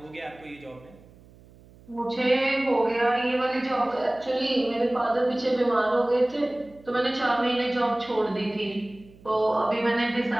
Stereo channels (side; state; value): right; noise; hum, 25 dB below the sound